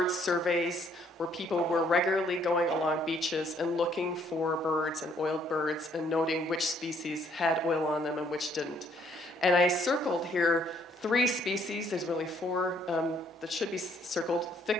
surveys, where people were regularly going along beaches and looking for birds and oiled birds and noting which species had oil on them and which didn't. And I circled here 3 species, there's really 4 that should be circled:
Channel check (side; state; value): both; normal; correlation 0.66